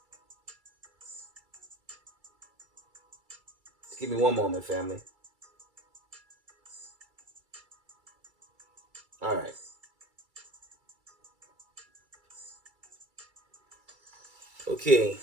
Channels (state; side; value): late; left; 2.3 ms